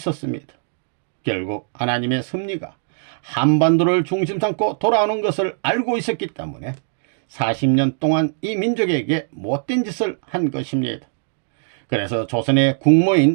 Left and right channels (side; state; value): left; silent; digital silence